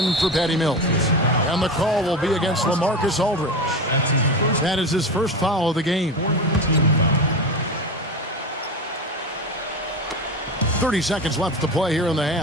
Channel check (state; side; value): normal; both; correlation 0.24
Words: for Patty Mills. And the call will be against LaMarcus Aldridge. That is his first foul of the game. 30 seconds left to play here in the